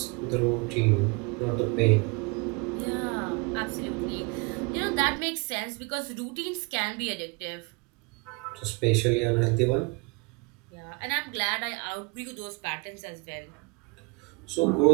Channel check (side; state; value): left; quieter; 28.2 dB